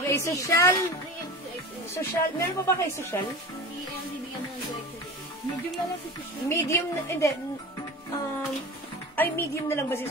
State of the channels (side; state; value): both; normal; correlation 0.32